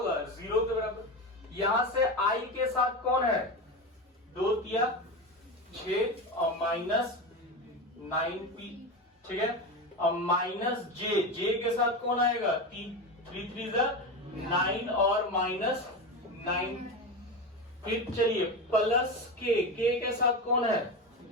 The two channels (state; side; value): normal; both; correlation 0.21